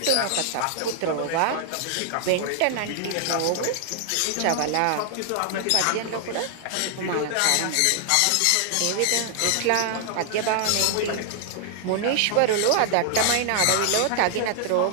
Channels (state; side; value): different; both; correlation 0.00